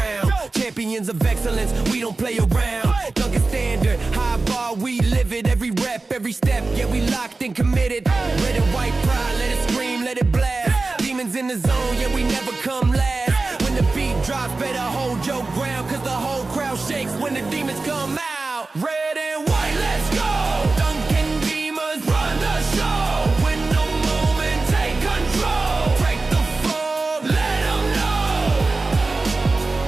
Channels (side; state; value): left; quieter; 3.6 dB